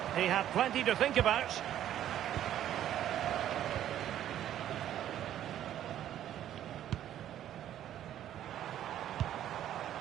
He had plenty to think about.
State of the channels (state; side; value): quieter; left; 11.5 dB